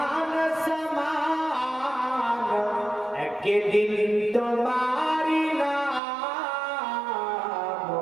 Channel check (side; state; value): left; drops out; at 6.0 s